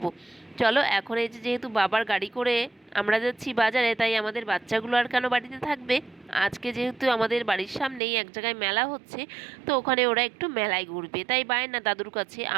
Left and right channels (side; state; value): left; drops out; at 8.0 s